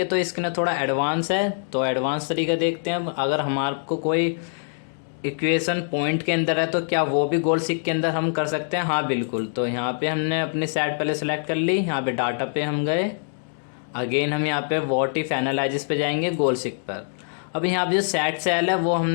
तो इसके ना थोड़ा एडवांस है। तो एडवांस तरीका देखते हैं। अगर हमारे को कोई इक्वेशन पॉइंट के अंदर है तो क्या वो भी गोल सीक के अंदर हम कर सकते हैं। हाँ बिल्कुल। तो यहाँ पे हमने अपनी साइड पहले सेलेक्ट कर ली। यहाँ पे डाटा पे हम गए, अगेन हम यहाँ पे व्हाट इफ एनालिसिस पे जाएंगे गोल सीक पर। अब यहाँ पे जो सेट सेल है वो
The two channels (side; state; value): right; silent; digital silence